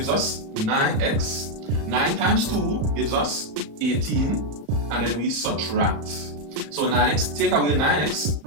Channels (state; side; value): late; left; 34 ms